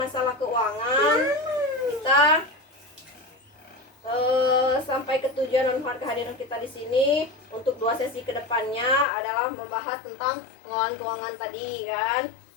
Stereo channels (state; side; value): drops out; right; at 9.1 s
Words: keuangan kita sampai ke tujuan dan kehadiran kita di sini untuk 2 sesi kedepannya adalah membahas tentang pengelolaan keuangan tadi kan.